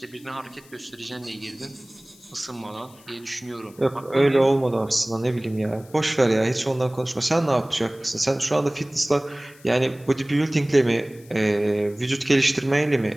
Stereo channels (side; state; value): left; noise; hiss, 26 dB below the sound